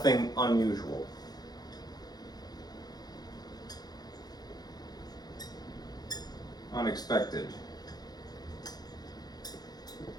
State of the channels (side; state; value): right; late; 0.19 ms